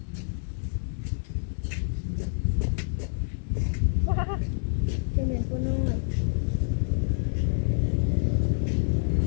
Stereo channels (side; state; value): right; silent; digital silence